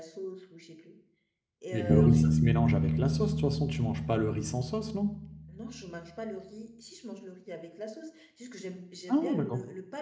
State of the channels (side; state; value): both; identical; correlation 1.00